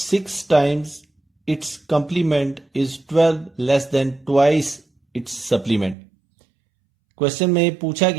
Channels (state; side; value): drops out; left; at 6.0 s